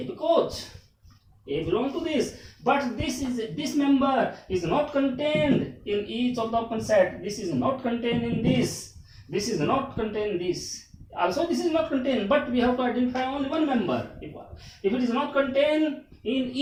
because A belongs to this. But this member is not contained in each of the open set. This is not contained in this. This is not contained in this. Also, this is not contained, but we have to identify only one member. If it is not contained in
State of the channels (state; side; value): identical; both; correlation 1.00